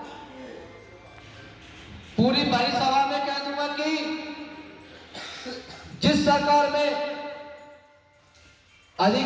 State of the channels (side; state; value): both; identical; correlation 1.00